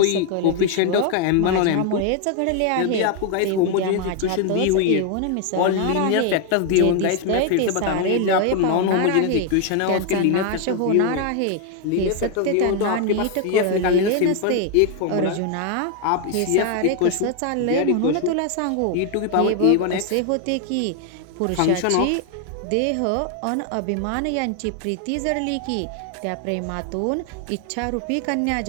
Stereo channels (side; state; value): both; different; correlation 0.00